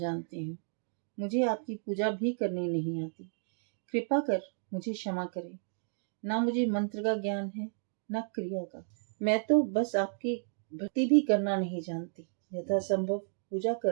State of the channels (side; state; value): left; silent; 56 dB below the other